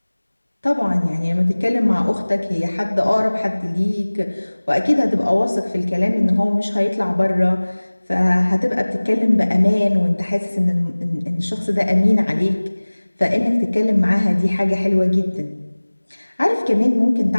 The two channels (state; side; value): inverted; both; correlation -1.00